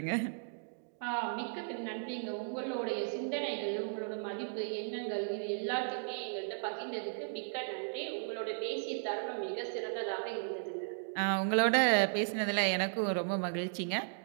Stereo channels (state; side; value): silent; left; digital silence